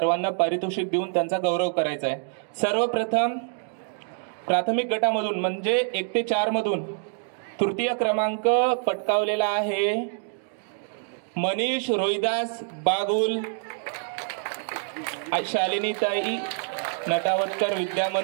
पारितोषिक देऊन त्यांचा गौरव करायचा आहे. सर्वप्रथम प्राथमिक गटामधून म्हणजे 1 ते 4 मधून तृतीय क्रमांक पटकावलेला आहे मनीष रोहिदास बागुल, शालिनीताई नटावतकर विद्या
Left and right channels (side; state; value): left; silent; digital silence